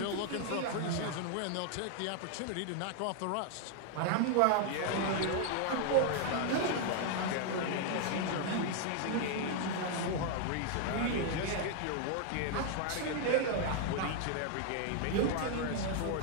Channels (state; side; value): different; both; correlation 0.00